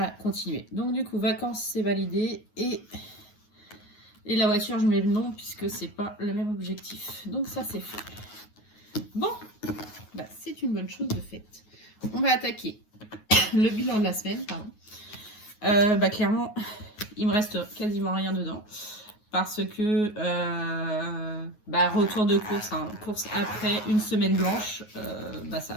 continué. Donc du coup, vacances, c'est validé. Et la voiture, je mets le nom, puisque c'est pas le même objectif. Donc ça, c'est fait. Bon, c'est une bonne chose de faite. On va attaquer le bilan de la semaine, pardon. Clairement, il me reste quasiment rien dedans. Parce que, retour de course, hein, course après une semaine blanche,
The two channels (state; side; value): late; right; 9.4 ms